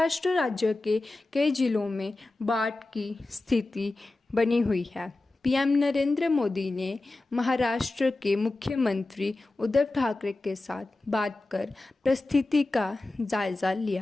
राज्य के कई जिलों में बाढ़ की स्थिति बनी हुई है। पीएम नरेंद्र मोदी ने महाराष्ट्र के मुख्यमंत्री उद्धव ठाकरे के साथ बात कर परिस्थिति का जायजा लिया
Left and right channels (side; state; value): right; quieter; 3.0 dB